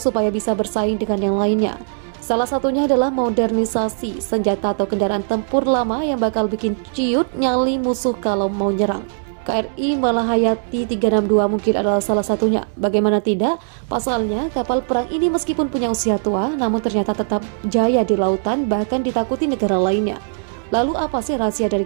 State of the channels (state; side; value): silent; left; digital silence